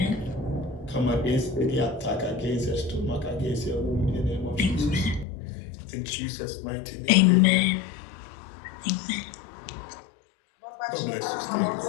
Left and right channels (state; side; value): drops out; right; at 5.2 s